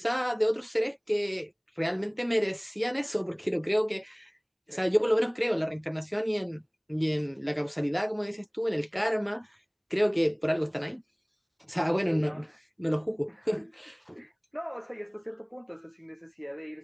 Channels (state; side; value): identical; both; correlation 1.00